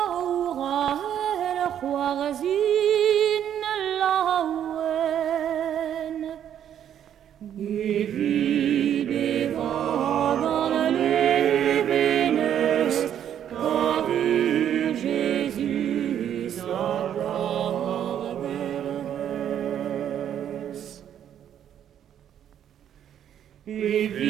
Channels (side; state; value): left; quieter; 9.9 dB